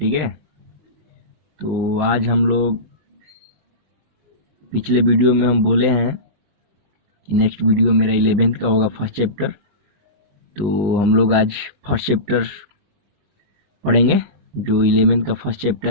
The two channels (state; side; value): late; left; 20 ms